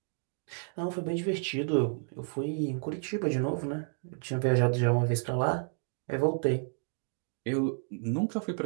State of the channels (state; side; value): silent; left; 57 dB below the other